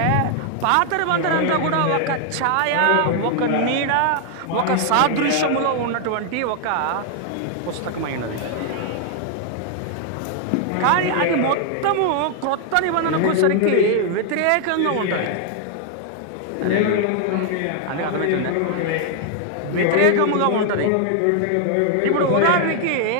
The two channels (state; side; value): different; both; correlation 0.00